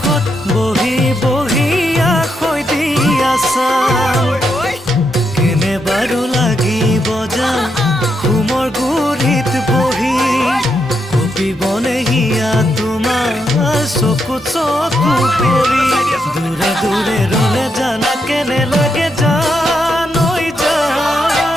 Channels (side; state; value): both; normal; correlation 0.81